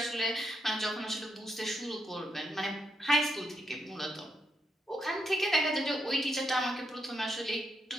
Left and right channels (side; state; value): both; normal; correlation 0.81